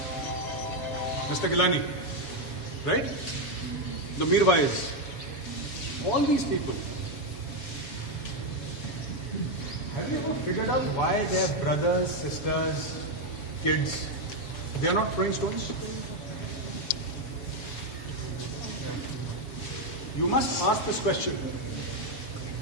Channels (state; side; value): late; right; 7.1 ms